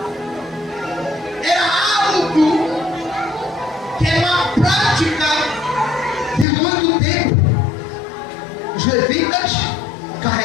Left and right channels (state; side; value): drops out; right; at 6.5 s